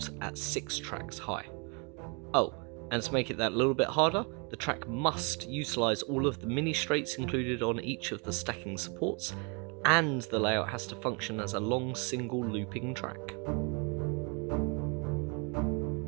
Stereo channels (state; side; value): quieter; left; 33.9 dB